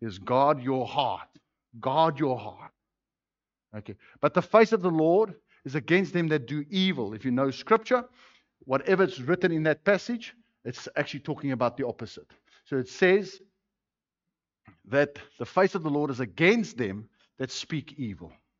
is guard your heart. Guard your heart. Okay. But the face of the Lord is against them that do evil. If you know scripture, whatever is written in that passage, it's actually talking about the opposite. So it says that the face of the Lord is against them that speak evil.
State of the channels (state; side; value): identical; both; correlation 1.00